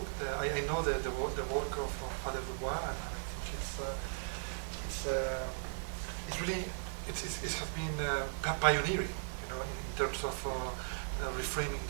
I know the work of Father Dubois, and I think it's really it has been pioneering, you know, in terms of reframing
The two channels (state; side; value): silent; left; digital silence